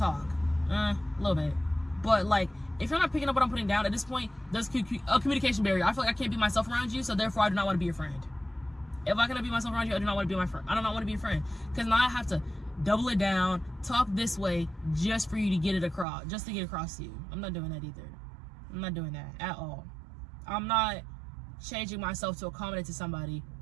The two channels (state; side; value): drops out; left; at 16.1 s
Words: a little bit. But like if you're not picking up what I'm putting down at this point, there's a communication barrier. I feel like I can't be myself around you, so therefore I do not want to be your friend. If I cannot be myself around you, I do not want to be my friend. I do not want to be your friend. Cause now I have to double it down, talk this way just for you to get it across, just to get across to you. I'm not doing that either. I'm not doing that at all. I'm not changing myself to accommodate to somebody